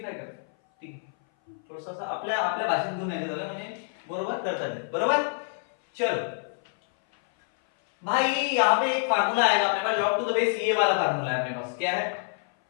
कर, ठीक आहे, थोडंसं असं आपल्या आपल्या भाषेत घेऊन यायचं झालं म्हणजे बरोबर करता येईल, बरोबर। चलो भाई यहाँ पे एक फार्मूला आएगा अपने पास, log टू द बेस ये वाला फार्मूला है अपने पास, क्या है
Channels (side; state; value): right; silent; 58 dB below the other